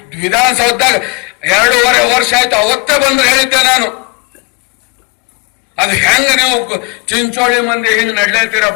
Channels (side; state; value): right; quieter; 28.4 dB